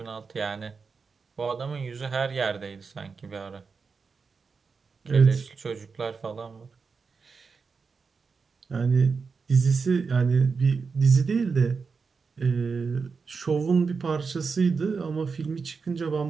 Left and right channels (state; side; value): quieter; left; 5.0 dB